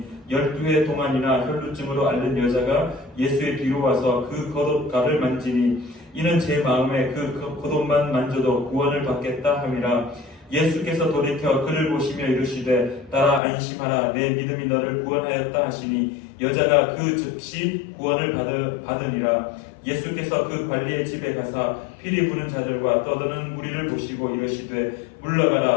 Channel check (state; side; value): drops out; right; at 13.4 s